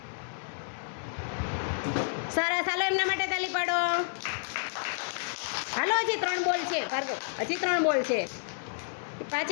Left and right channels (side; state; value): right; silent; 58 dB below the other